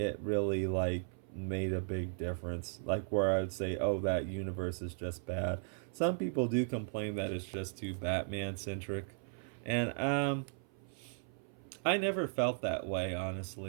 really, like, made a big difference. Like, where I would say, oh, that universe is just bad. Some people do complain that it's just too Batman-centric. And, I never felt that way,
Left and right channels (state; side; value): silent; left; 53 dB below the other